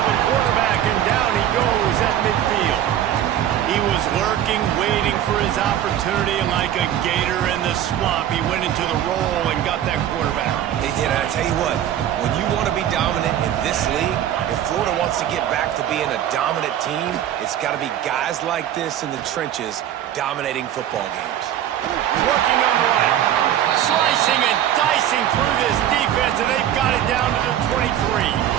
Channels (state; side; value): quieter; left; 11.1 dB